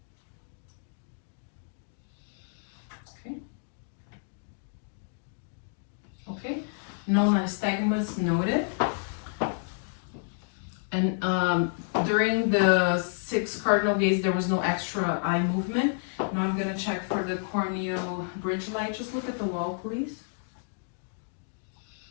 Okay. Okay. No nystagmus noted. And during the 6th cardinal gaze, there was no extra eye movement. Now I'm gonna check for the corneal bridge light. Just look at the wall, please.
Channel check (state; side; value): silent; right; digital silence